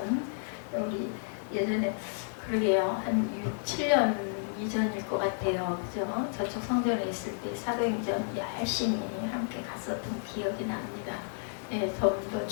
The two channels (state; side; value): silent; right; 57 dB below the other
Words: 우리 예전에 그러게요 한 6, 7년 이전일 것 같아요. 그죠? 저쪽 성전에 있을 때 사도행전 열심히 함께 갔었던 기억이 납니다. 예, 더